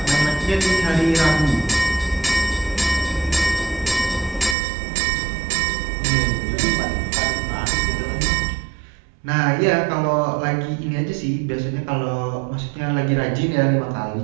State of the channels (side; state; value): left; drops out; at 4.5 s